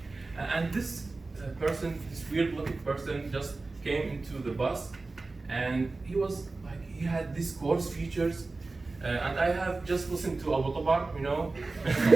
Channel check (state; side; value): quieter; left; 3.5 dB